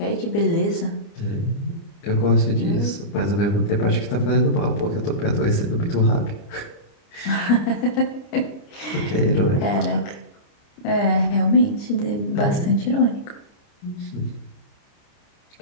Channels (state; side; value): late; right; 29 ms